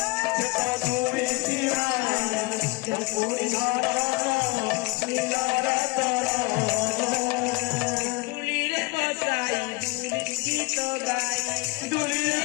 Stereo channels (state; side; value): quieter; right; 25.4 dB